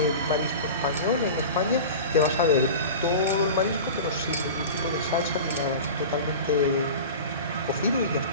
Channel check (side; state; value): both; inverted; correlation -0.33